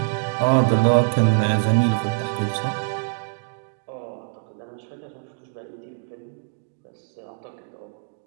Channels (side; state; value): left; silent; digital silence